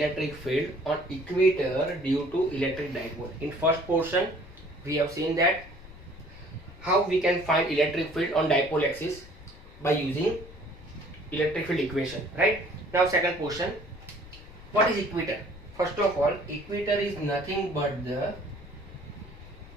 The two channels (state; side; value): noise; left; rumble, 18 dB below the sound